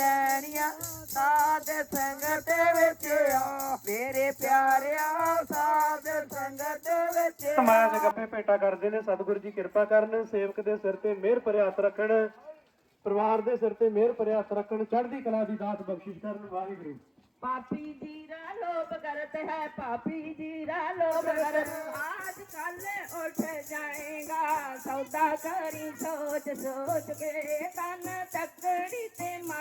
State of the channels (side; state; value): both; identical; correlation 1.00